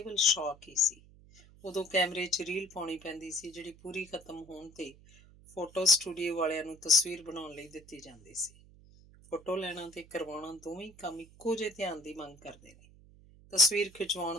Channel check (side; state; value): right; noise; hum, 24 dB below the sound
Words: ਸ਼ੌਕ ਹੀ ਸੀ। ਉਦੋਂ ਕੈਮਰੇ 'ਚ ਰੀਲ ਪਾਉਣੀ ਪੈਂਦੀ ਸੀ, ਜਿਹੜੀ ਪੂਰੀ ਖਤਮ ਹੋਣ ਤੇ ਫੋਟੋ ਸਟੂਡੀਓ ਵਾਲਿਆਂ ਨੂੰ ਤਸਵੀਰ ਬਣਾਉਣ ਲਈ ਦਿੱਤੀ ਜਾਂਦੀ ਸੀ। ਫੋਟੋ ਲੈਣਾ ਤੇ ਕਰਵਾਉਣਾ ਦੋਵੇਂ ਕੰਮ ਇੱਕੋ ਜਿਹੇ ਧਿਆਨ ਦੀ ਮੰਗ ਕਰਦੇ ਨੇ। ਤਸਵੀਰ